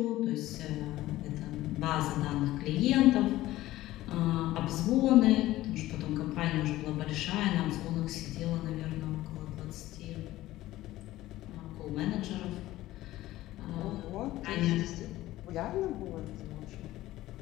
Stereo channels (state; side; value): quieter; right; 16.0 dB